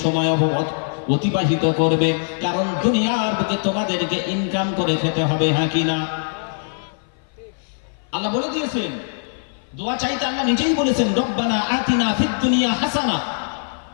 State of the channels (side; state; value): right; silent; 57 dB below the other